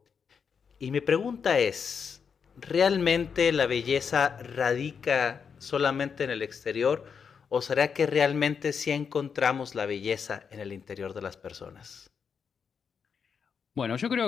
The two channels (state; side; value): quieter; right; 6.4 dB